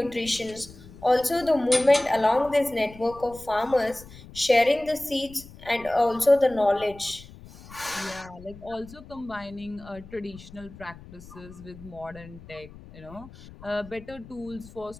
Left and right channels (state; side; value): noise; left; rumble, 18 dB below the sound